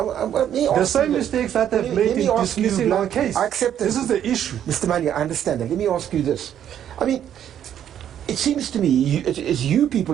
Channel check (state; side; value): quieter; left; 10.1 dB